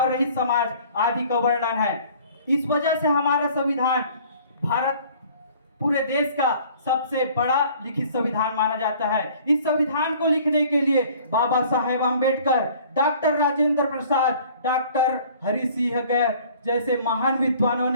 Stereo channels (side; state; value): both; inverted; correlation -0.52